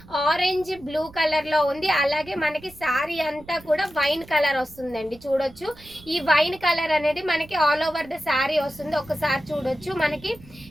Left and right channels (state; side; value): noise; right; rumble, 22 dB below the sound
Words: ఆరెంజ్ బ్లూ కలర్ లో ఉంది. అలాగే మనకి శారీ అంతా కూడా వైన్ కలర్ వస్తుందండి. చూడొచ్చు, ఈ వైన్ కలర్ అనేది మనకి ఆల్ ఓవర్ ద శారీ వస్తుంది. ఒకసారి చూడొచ్చు, మనకి